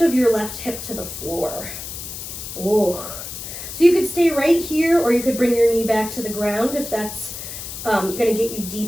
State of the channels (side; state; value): left; noise; hiss, 9 dB below the sound